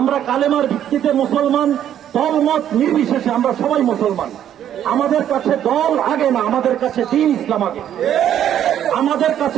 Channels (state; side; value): quieter; left; 10.4 dB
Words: কালেমার ভিত্তিতে মুসলমান, দলমত নির্বিশেষে আমরা সবাই মুসলমান। আমাদের কাছে দল আগে না, আমাদের কাছে দিন ইসলাম আগে। আমাদের